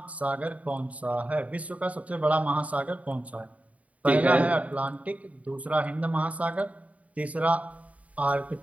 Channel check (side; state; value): left; late; 0.068 ms